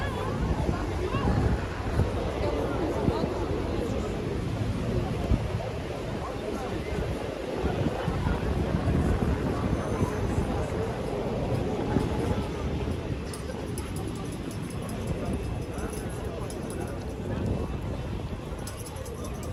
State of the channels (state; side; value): identical; both; correlation 1.00